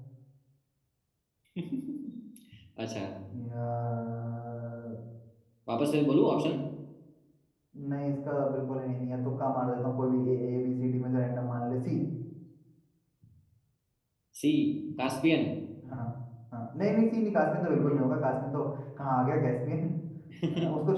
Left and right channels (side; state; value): both; identical; correlation 1.00